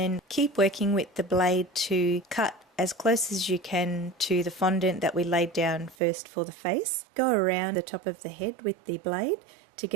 keep working with the blade to cut as close as you can to the fondant that we laid down first for the face. Go around the top of the head with the blade to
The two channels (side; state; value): left; drops out; at 6.0 s